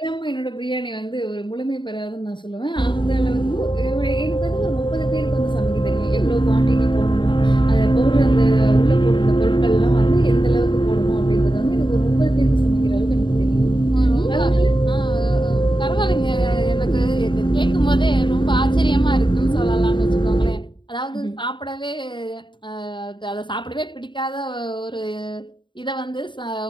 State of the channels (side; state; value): right; late; 0.23 ms